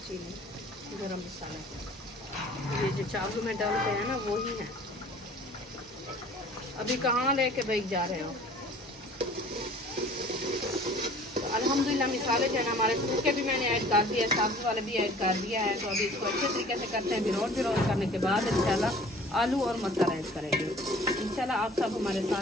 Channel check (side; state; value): both; normal; correlation 0.49